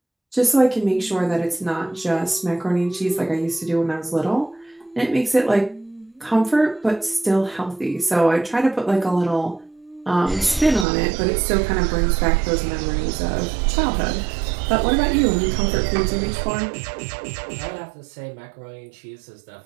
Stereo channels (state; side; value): drops out; left; at 10.9 s